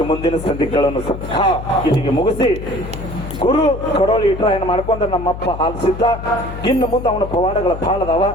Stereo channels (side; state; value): left; noise; hum, 9 dB below the sound